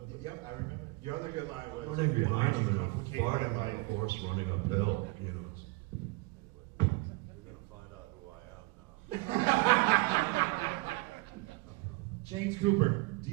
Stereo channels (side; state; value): left; quieter; 23.3 dB